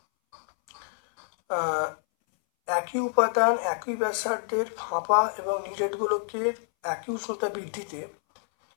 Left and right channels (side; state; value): right; silent; 59 dB below the other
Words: একই উপাদান একই ব্যাসার্ধের ফাঁপা এবং নিরেটগুলোকে একই উষ্ণতা বৃদ্ধিতে